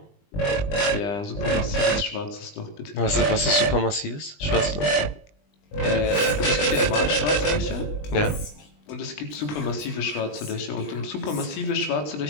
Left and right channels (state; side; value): late; right; 20 ms